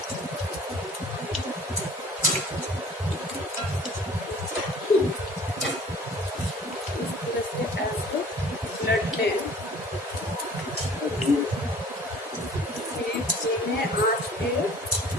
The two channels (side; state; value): both; normal; correlation 0.49